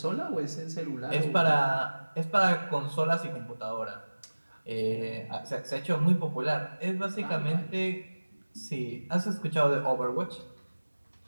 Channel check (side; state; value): both; inverted; correlation -1.00